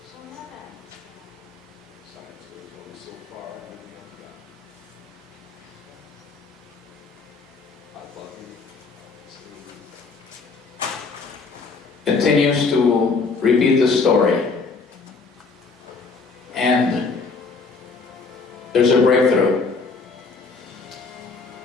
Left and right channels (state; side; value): quieter; right; 4.4 dB